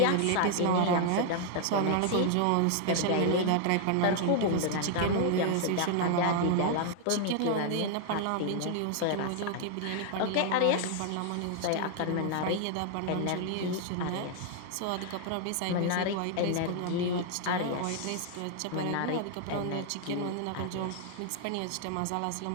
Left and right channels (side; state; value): both; different; correlation 0.00